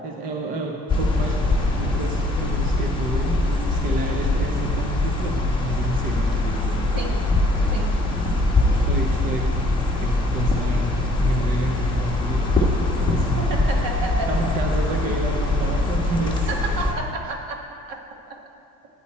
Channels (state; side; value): normal; both; correlation 0.61